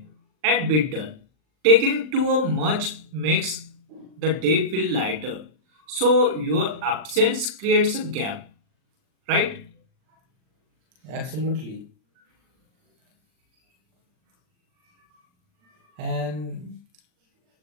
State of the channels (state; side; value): late; left; 39 ms